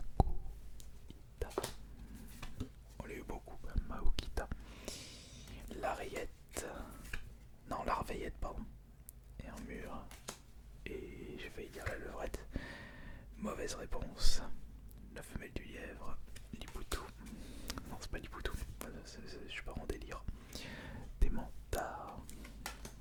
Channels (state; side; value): identical; both; correlation 1.00